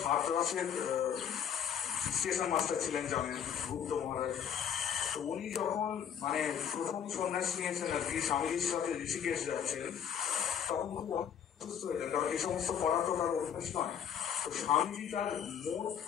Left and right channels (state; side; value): quieter; right; 8.4 dB